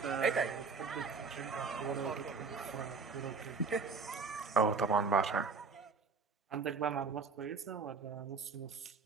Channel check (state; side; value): quieter; left; 4.9 dB